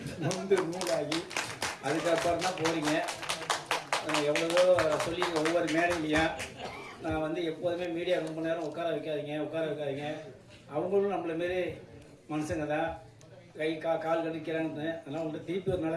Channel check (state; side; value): identical; both; correlation 1.00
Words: நூலாகி அதுக்கப்புறம் தான் போகிறீங்க. எவ்வளவோ சொல்லி ஒவ்வொரு மேடையிலையும் நான் வந்து எப்போதுமே மீடியா ரொம்ப நேரம் உட்கார வைக்காதீங்க. அவங்களும் நம்மள மாரி மனுஷங்க தான், கை கால் கடிக்கிறான்னு. அதனால் உங்கள்கிட்ட திருப்பி ஒரு